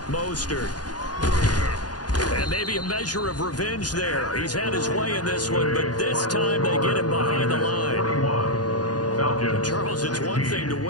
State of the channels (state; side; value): late; right; 0.69 ms